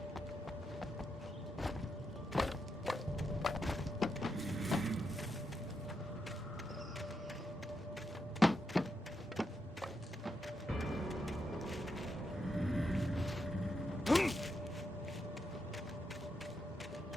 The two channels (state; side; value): normal; both; correlation 0.83